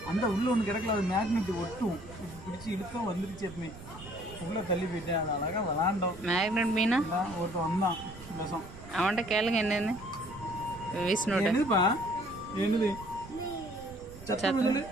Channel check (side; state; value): right; noise; rumble, 16 dB below the sound